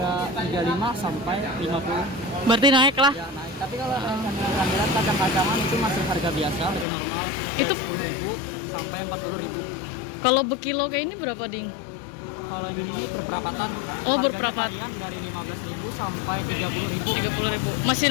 35 sampai 50. Berarti naik lah. Ya naik. Tapi kalau kehamilan kacang-kacangan itu masih harga biasa, harga normal. Dari Itu 10.000 sampai 40.000. Kalau berkilo kayak ini berapa ding? Kalau yang ini berperapatan. Oh, Harganya berperapat. varian dari 15.000 sampai 30.000. 30.000. Masih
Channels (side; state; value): right; drops out; at 6.9 s